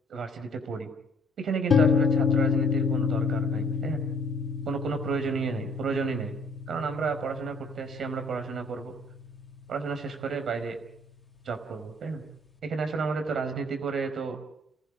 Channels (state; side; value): normal; both; correlation 0.61